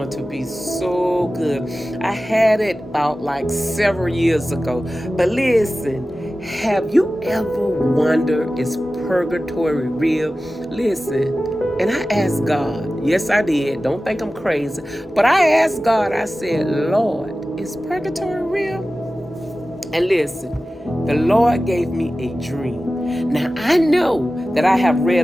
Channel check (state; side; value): normal; both; correlation 0.95